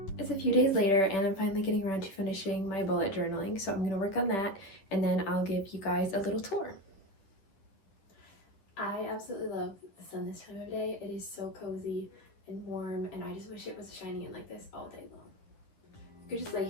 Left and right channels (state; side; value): late; right; 11 ms